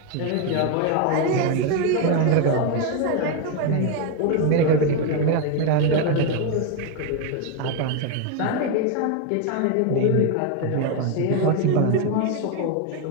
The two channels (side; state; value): both; different; correlation 0.01